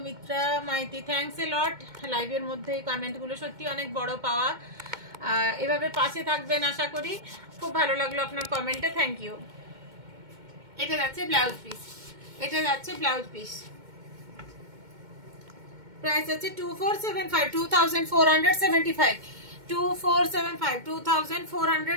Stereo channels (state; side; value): late; left; 2.2 ms